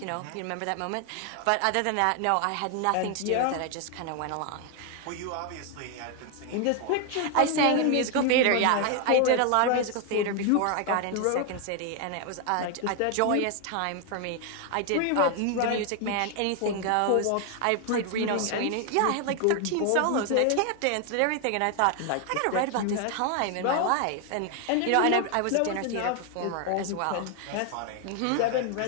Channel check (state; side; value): different; both; correlation 0.01